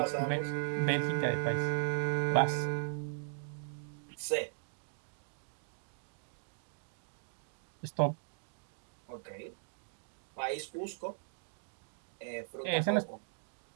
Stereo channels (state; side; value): silent; left; digital silence